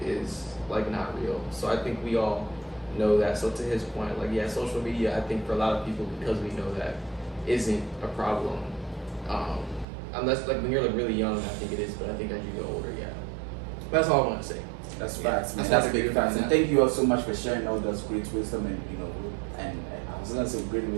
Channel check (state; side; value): drops out; left; at 9.9 s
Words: is like not real. So I think we all know that. So to his point, like social media, I think for a lot of people, because we know that, isn't a problem. Unless like when you're like really young, I think it is, but I think as you get older, that's all I want to say. That's facts, man. That's That's big facts. And thank you all so much for sharing all those great wisdom and and I was gonna say great